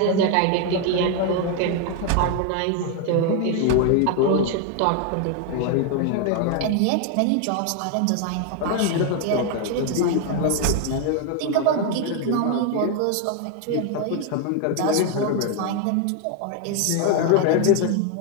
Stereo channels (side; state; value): both; different; correlation 0.01